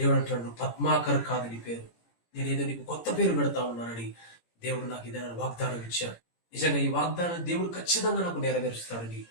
అంటాడు, పద్మాకర్ కాదు నీ పేరు, నేనేదో నీకు కొత్త పేరు పెడతా ఉన్నానని దేవుడు నాకు ఇదైనా వాగ్దానం ఇచ్చాడు. నిజంగా ఈ వాగ్దానం దేవుడు ఖచ్చితంగా నాకు నెరవేరుస్తాడని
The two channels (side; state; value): right; late; 17 ms